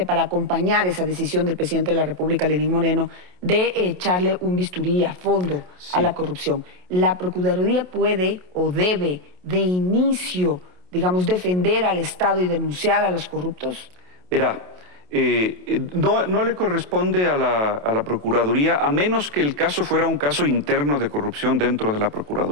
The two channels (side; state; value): left; late; 28 ms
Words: para acompañar esa decisión del presidente de la República, Lenín Moreno, de echarle un bisturí a fondo a la corrupción? ¿La Procuraduría puede o debe de inicio, digamos, defender al Estado y denunciar a los corruptos? Verá, no le corresponde a la Procuraduría, a menos que el caso fuera un caso interno de corrupción dentro de la